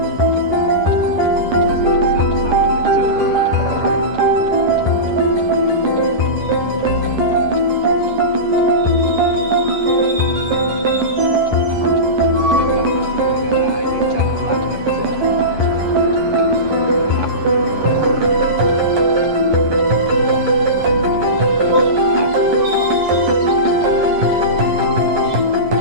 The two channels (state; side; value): late; left; 11 ms